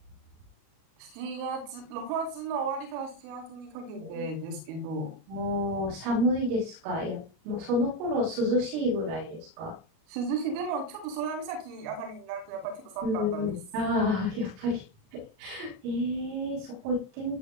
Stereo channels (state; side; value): late; left; 38 ms